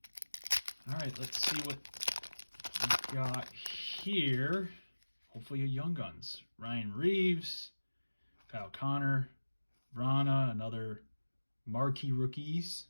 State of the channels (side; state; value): both; inverted; correlation -1.00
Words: All right, let's see what we got here. Hopefully a Young Guns. Ryan Reeves, Kyle Connor, Vrana, another marquee rookies.